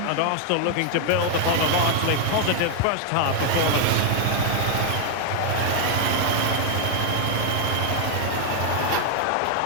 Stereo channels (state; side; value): different; both; correlation 0.00